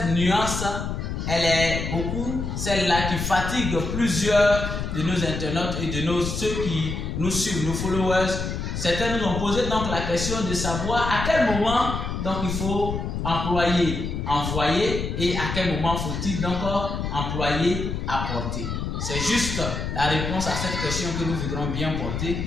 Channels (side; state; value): left; noise; rumble, 4 dB below the sound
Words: nuance, elle est beaucoup celle-là qui fatigue plusieurs de nos internautes et de ceux qui nous suivent, nos followers. Certains nous ont posé donc la question de savoir à quel moment donc il faut employer envoyer et à quel moment faut-il donc employer apporter. C'est juste la réponse à cette question que nous voudrons bien